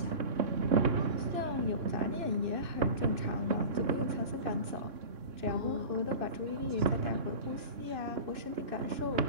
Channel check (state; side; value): late; left; 2.6 ms